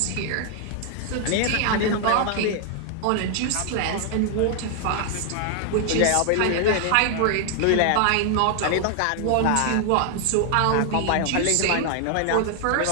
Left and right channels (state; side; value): different; both; correlation 0.00